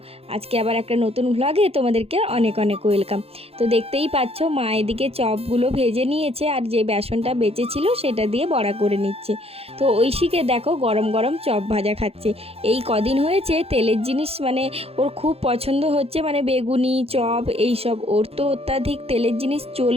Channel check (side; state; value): left; late; 0.29 ms